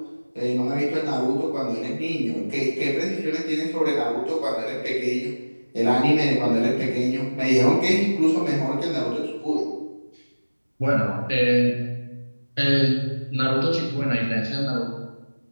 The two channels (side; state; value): both; inverted; correlation -1.00